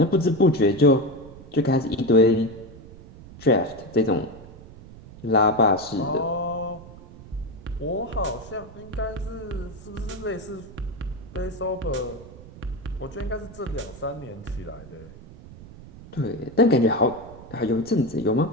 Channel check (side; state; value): right; noise; rumble, 18 dB below the sound